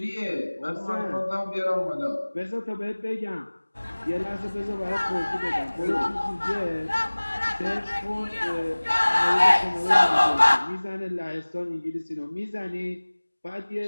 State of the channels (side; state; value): both; inverted; correlation -1.00